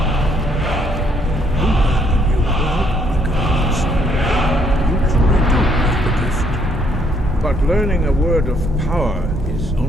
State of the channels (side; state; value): both; normal; correlation 0.68